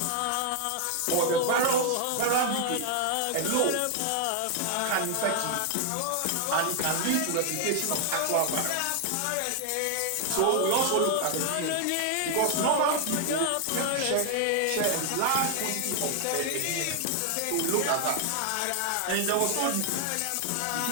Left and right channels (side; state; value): both; different; correlation 0.00